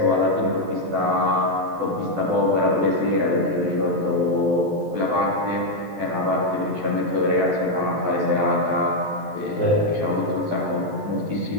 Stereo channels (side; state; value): left; late; 14 ms